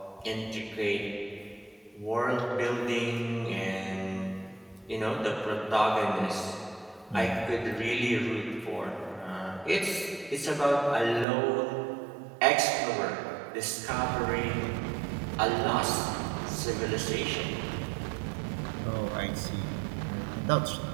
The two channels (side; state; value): left; drops out; at 11.2 s